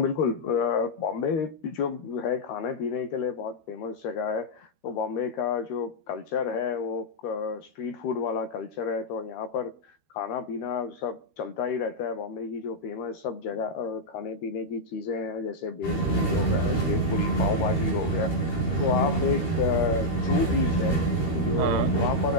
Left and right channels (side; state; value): right; late; 13 ms